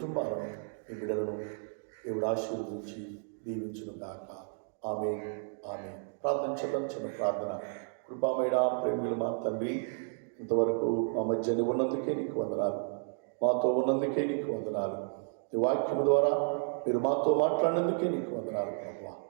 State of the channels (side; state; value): left; silent; 56 dB below the other